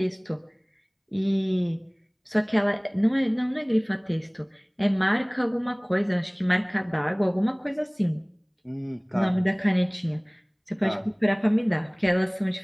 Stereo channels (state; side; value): identical; both; correlation 1.00